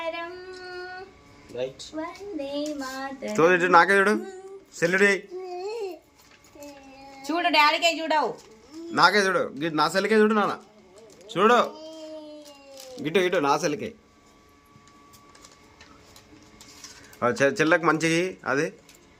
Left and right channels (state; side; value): identical; both; correlation 1.00